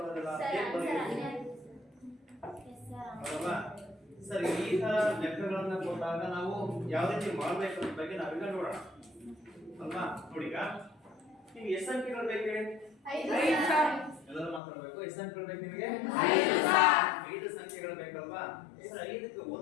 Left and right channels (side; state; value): right; drops out; at 14.6 s